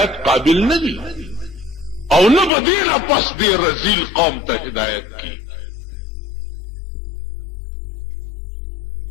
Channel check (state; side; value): drops out; right; at 2.5 s